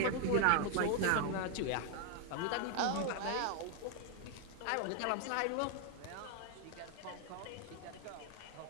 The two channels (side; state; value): both; different; correlation 0.00